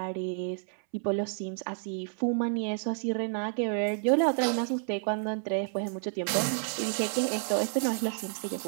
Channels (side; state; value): left; silent; 58 dB below the other